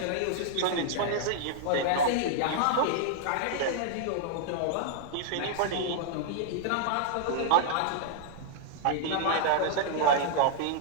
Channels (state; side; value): different; both; correlation 0.00